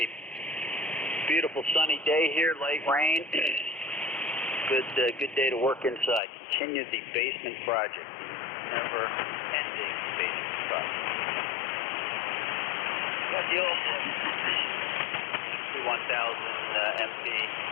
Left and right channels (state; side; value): drops out; right; at 6.2 s